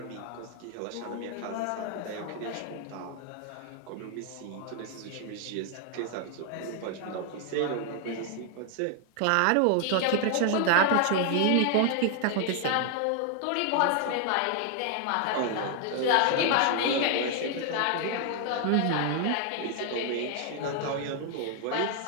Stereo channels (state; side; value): different; both; correlation 0.00